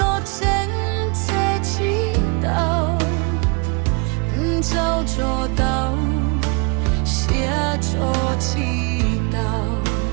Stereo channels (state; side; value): quieter; left; 32.6 dB